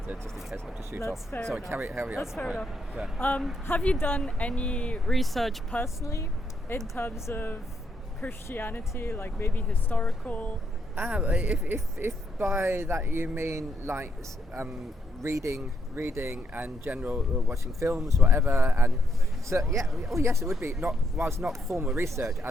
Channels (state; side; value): normal; both; correlation 0.77